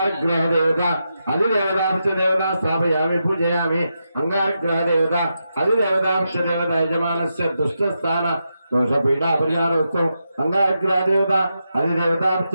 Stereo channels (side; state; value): both; inverted; correlation -0.86